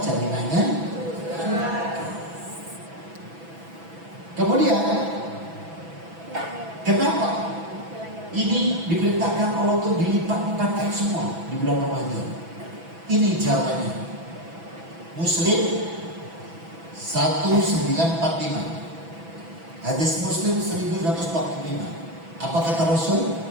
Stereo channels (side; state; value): left; late; 6.0 ms